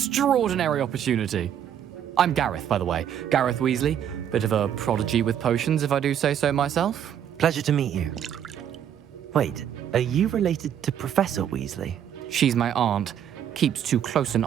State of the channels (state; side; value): quieter; left; 9.5 dB